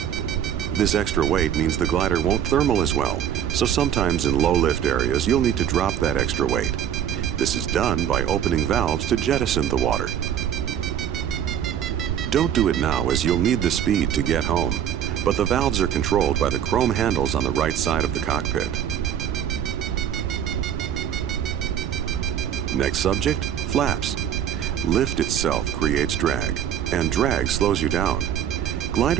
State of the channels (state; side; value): quieter; left; 9.7 dB